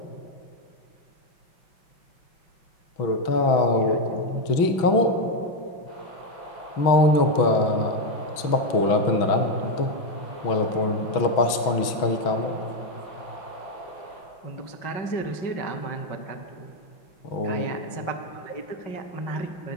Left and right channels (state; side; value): late; right; 6.2 ms